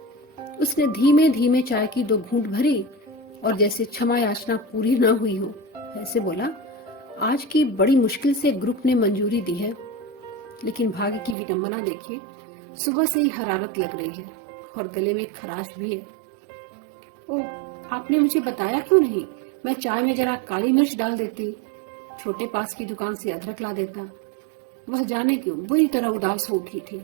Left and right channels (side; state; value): left; drops out; at 11.4 s